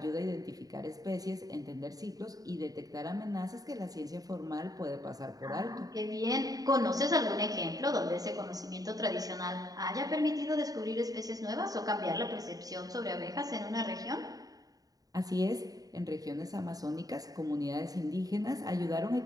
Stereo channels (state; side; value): late; left; 0.18 ms